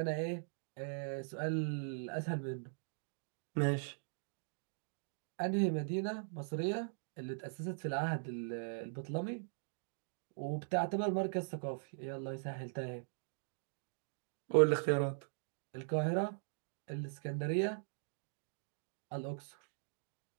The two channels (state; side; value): silent; left; digital silence